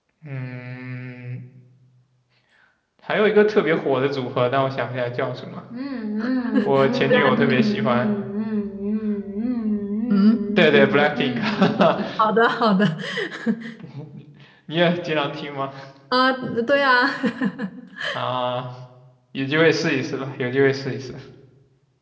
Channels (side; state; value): both; identical; correlation 1.00